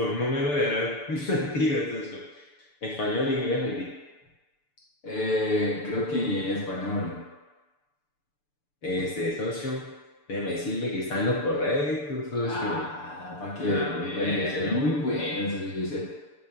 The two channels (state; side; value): late; right; 6.8 ms